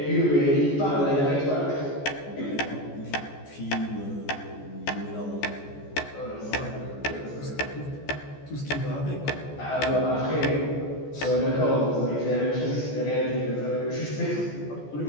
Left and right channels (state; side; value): late; right; 14 ms